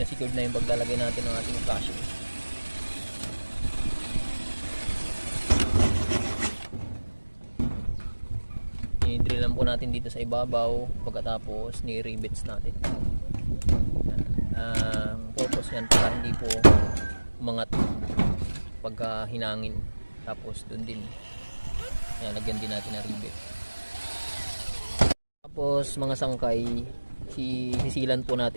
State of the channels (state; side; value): inverted; both; correlation -1.00